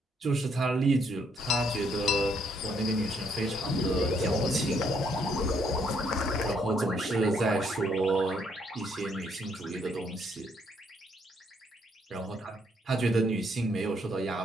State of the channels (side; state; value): both; normal; correlation 0.70